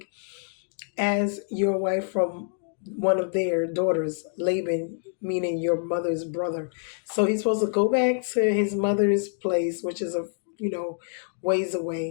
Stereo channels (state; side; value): silent; right; digital silence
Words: as your wife from one of their daughters, Laban, meaning your mother's brother." So he's supposed to go back to his mother's place, which is ways